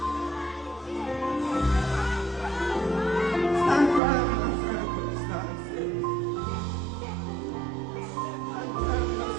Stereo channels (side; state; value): left; drops out; at 4.0 s